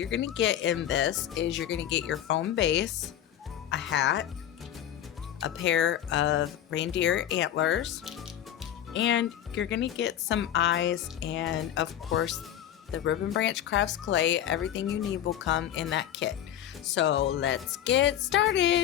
going to get in this is you're going to get your foam base, a hat, a pair of reindeer antlers, and you're going to get some eyes, and of course the Ribbon Branch Crafts clay. Everything you need will come in that kit. So let's get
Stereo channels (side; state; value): right; quieter; 11.0 dB